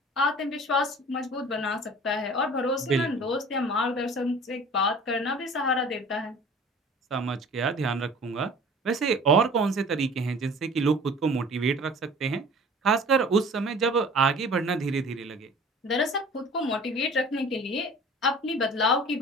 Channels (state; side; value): normal; both; correlation 0.45